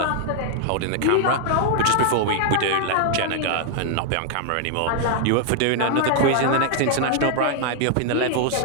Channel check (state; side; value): different; both; correlation 0.00